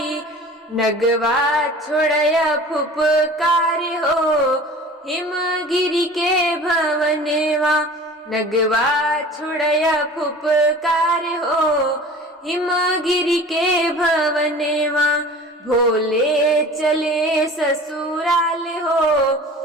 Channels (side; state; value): both; normal; correlation 0.41